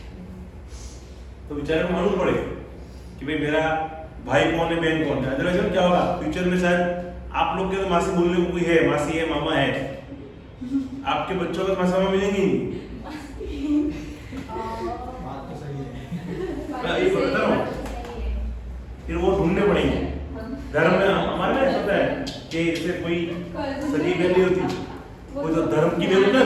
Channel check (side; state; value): both; identical; correlation 1.00